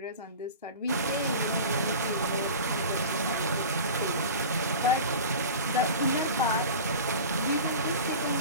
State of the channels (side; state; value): both; inverted; correlation -0.33